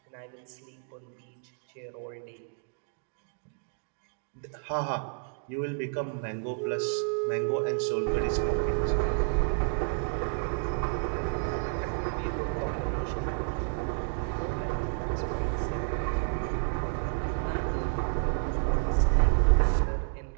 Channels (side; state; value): left; silent; 58 dB below the other